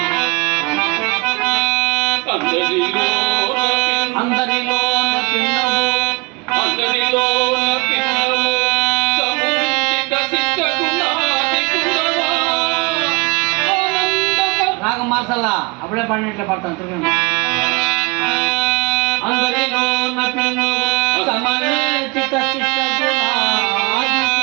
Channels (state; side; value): quieter; left; 28.1 dB